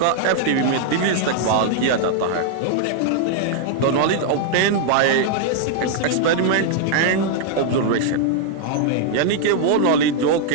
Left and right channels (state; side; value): different; both; correlation -0.01